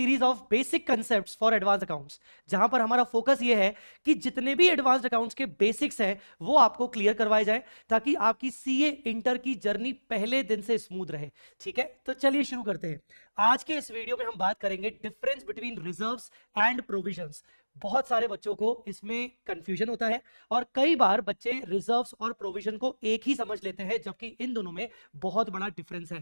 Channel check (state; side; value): inverted; both; correlation -1.00